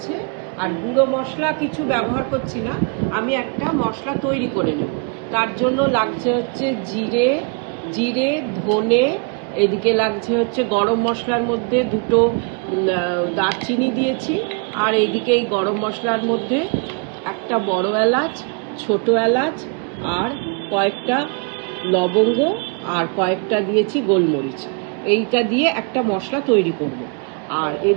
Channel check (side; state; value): left; quieter; 37.1 dB